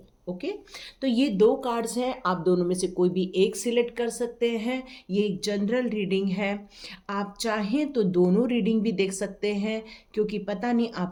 ओके, तो ये दो कार्ड्स हैं, आप दोनों में से कोई भी एक सिलेक्ट कर सकते हैं। ये एक जनरल रीडिंग है, आप चाहें तो दोनों रीडिंग भी देख सकते हैं, क्योंकि पता नहीं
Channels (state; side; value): identical; both; correlation 1.00